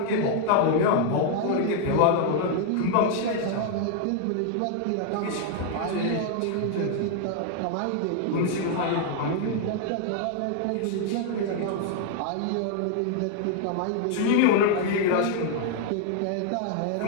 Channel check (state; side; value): different; both; correlation 0.00